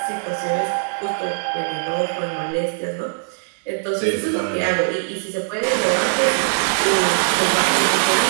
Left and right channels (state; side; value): silent; left; digital silence